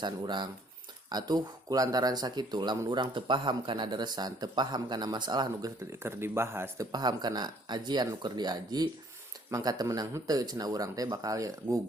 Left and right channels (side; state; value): both; normal; correlation 0.61